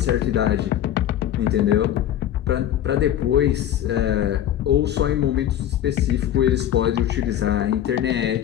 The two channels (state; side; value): quieter; right; 11.2 dB